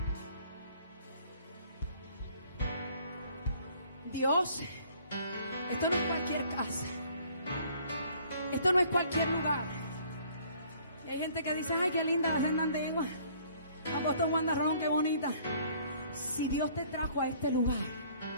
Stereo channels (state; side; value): inverted; both; correlation -0.58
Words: Dios, esto no es cualquier casa. Esto no es cualquier lugar. Y hay gente que dice, ay, qué linda la senda de Igua. Apóstol Juan Darrón, qué bonita. Si Dios te trajo a este lugar,